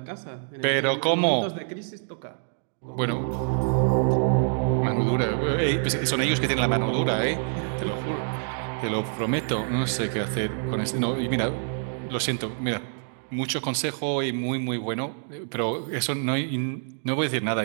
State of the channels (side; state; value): left; silent; digital silence